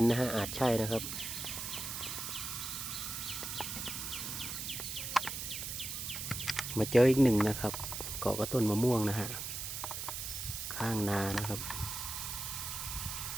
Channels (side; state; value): right; noise; hiss, 5 dB below the sound